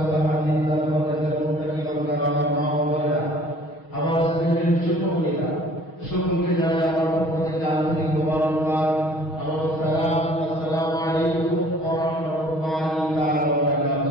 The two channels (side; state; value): right; late; 6.3 ms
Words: সাহায্যিল্লাহ মুত্তাকি বান্দারা, আমার মা বাবারা, আমার স্ত্রীর ছোট বোনেরা, সকলকে জানাই আমার পক্ষ থেকে আন্তরিক মোবারকবাদ। আমার সালাম, আসসালামু আলাইকুম ওয়া রাহমাতুল্লাহি তাআলা ওয়া